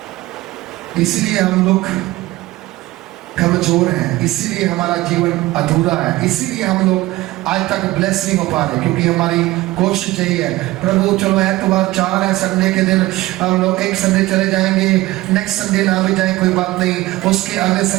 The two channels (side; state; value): left; quieter; 18.3 dB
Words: इसलिए हम लोग कमजोर हैं, इसीलिए हमारा जीवन अधूरा है, इसीलिए हम लोग आज तक ब्लेस नहीं हो पा रहे, क्योंकि हमारी कोशिश यही है प्रभु चलो एतवार 4 है, संडे के दिन हम लोग एक संडे चले जाएंगे, नेक्स्ट संडे ना भी जाए कोई बात नहीं, उसके अगले